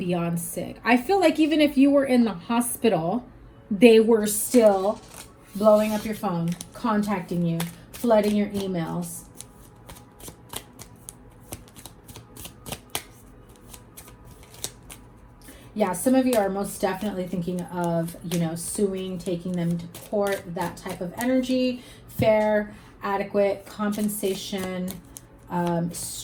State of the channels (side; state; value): both; identical; correlation 1.00